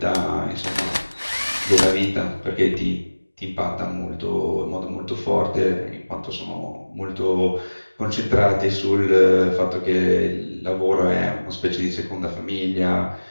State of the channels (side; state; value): both; inverted; correlation -1.00